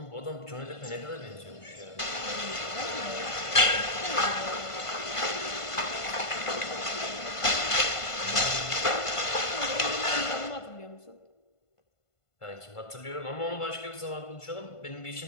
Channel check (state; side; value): late; right; 1.5 ms